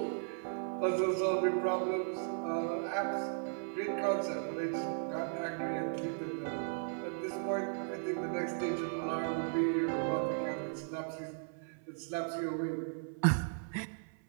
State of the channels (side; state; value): left; silent; 54 dB below the other